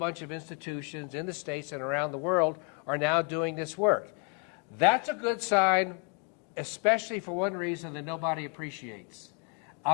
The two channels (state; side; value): quieter; right; 37.8 dB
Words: of institutions in the States and around the world are now doing this work. That's a good sign, especially for one reason that nobody appreciates.